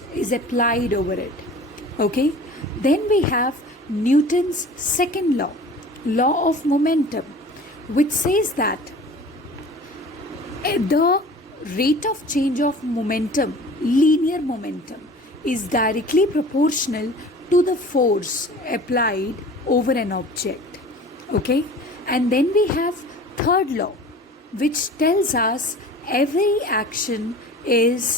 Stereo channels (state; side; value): normal; both; correlation 0.42